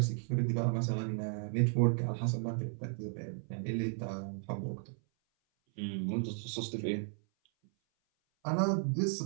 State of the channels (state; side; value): silent; left; 55 dB below the other